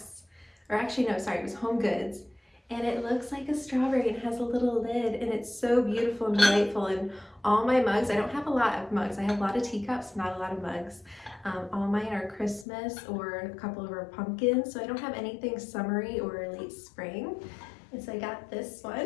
or actually no, sorry, it was HomeGoods. and it looks like a strawberry and has a little lid, and it's so beautiful and delightful. And all my mugs, I don't have a lot of mugs, I have a lot of teacups, not a lot of mugs. All mine are Christmas or a couple of our pumpkins, so I don't have anything summery or late spring. And so I got this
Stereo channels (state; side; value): drops out; right; at 12.7 s